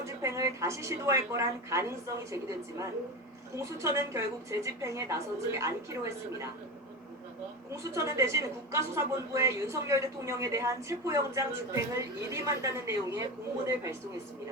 집행을 다시 시도할 거란 가능성이 제기됐지만 공수처는 결국 재집행에 나서지 않기로 했습니다. 공수처는 대신 국가수사본부에 윤석열 대통령에 대한 체포영장 집행을 일임한다는 내용의 공문을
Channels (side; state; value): both; normal; correlation 0.22